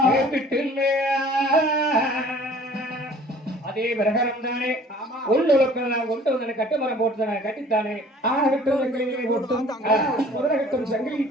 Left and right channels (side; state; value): both; normal; correlation 0.51